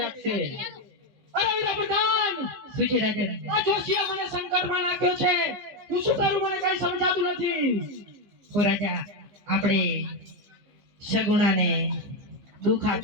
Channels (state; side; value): late; left; 15 ms